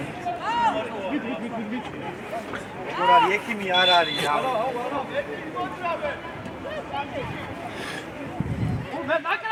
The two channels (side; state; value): both; identical; correlation 1.00